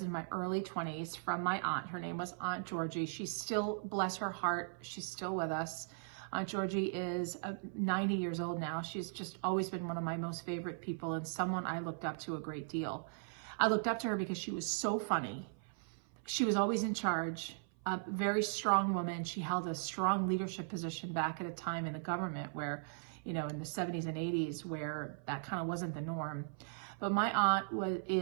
in my early 20s from my aunt. Her name was Aunt Georgie. She's still, bless her heart, she's still with us. Aunt Georgie is 90 years old now. She's just always been one of my most favorite people and someone I looked up to a great deal. I looked up to her because she was so funny. She was always in charge, a very strong woman. She held a strong leadership position back at a time in the government where, in the 70s and 80s, where that kind of wasn't the norm. But my aunt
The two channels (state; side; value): silent; left; 52 dB below the other